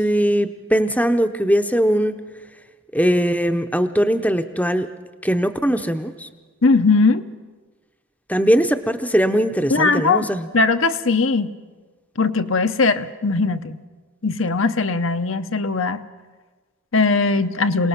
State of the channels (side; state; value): both; normal; correlation 0.56